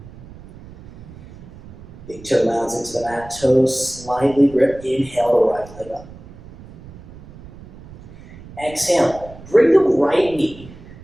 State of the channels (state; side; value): noise; right; rumble, 19 dB below the sound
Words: Big toe mounds into the mat. Toes slightly grip. Inhale the right leg up. Exhale. Bring the right knee